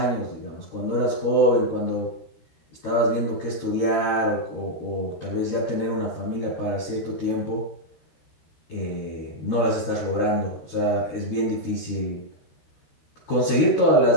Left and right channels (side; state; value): right; late; 13 ms